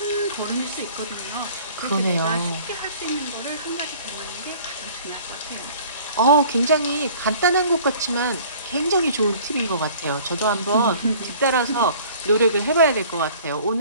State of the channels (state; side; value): inverted; both; correlation -0.50